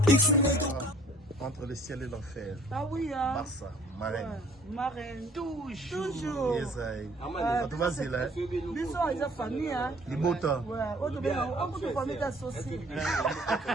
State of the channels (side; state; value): both; normal; correlation 0.56